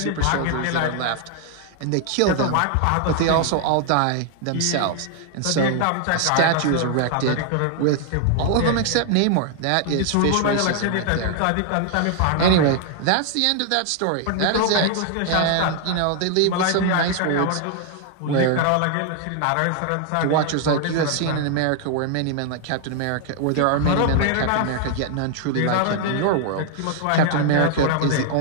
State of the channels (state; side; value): different; both; correlation 0.00